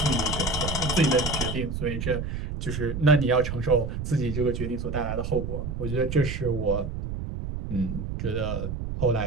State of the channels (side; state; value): right; noise; rumble, 4 dB below the sound